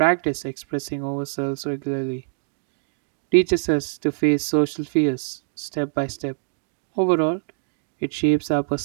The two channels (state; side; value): silent; left; digital silence